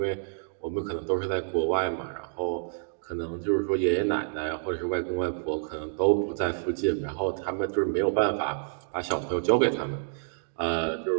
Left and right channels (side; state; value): left; silent; digital silence